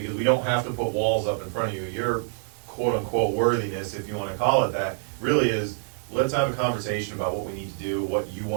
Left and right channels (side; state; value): left; silent; digital silence